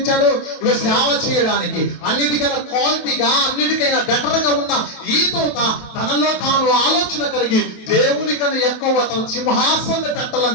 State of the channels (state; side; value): late; right; 27 ms